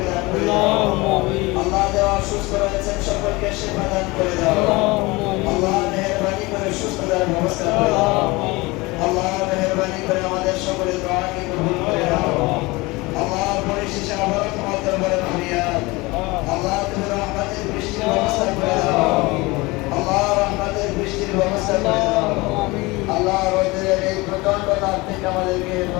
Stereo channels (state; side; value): quieter; right; 23.1 dB